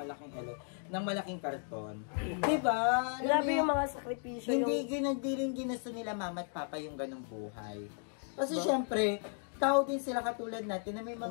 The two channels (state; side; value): silent; right; 54 dB below the other